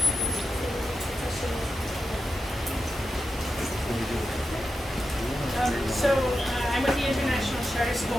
I'm with the International Charter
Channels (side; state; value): both; normal; correlation 0.90